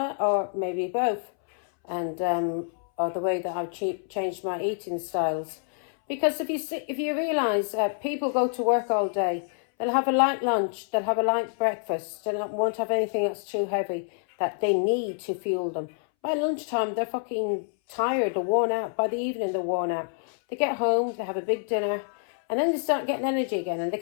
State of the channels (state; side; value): silent; right; 60 dB below the other